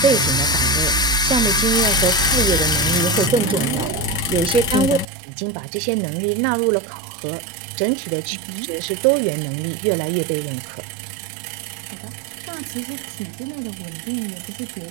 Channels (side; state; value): left; drops out; at 5.1 s